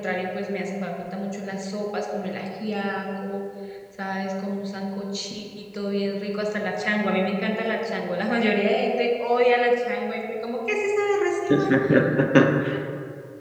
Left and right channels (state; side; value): identical; both; correlation 1.00